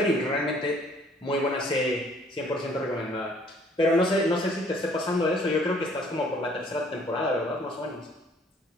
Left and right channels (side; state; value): both; normal; correlation 0.59